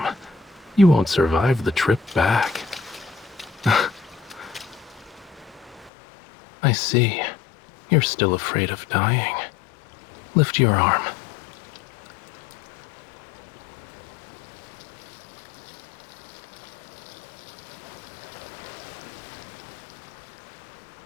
You won't survive the trip back. I see. You're still afraid of dying. Lift your arm.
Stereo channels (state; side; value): drops out; right; at 5.9 s